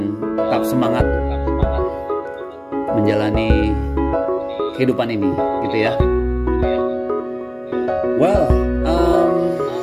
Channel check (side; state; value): both; identical; correlation 1.00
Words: tetap semangat menjalani kehidupan ini, gitu ya. Well,